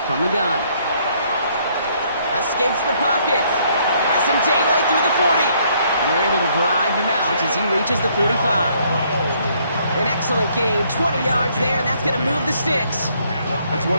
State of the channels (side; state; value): both; inverted; correlation -0.67